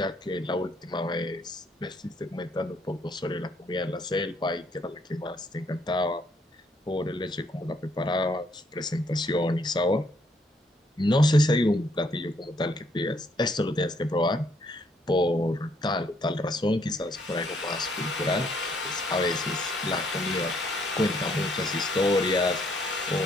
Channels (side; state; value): both; normal; correlation 0.69